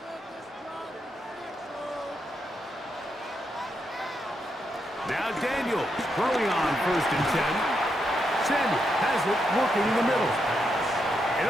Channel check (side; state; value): both; normal; correlation 0.82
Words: Now Daniels throwing on 1st and 10. Samuel has it working in the middle.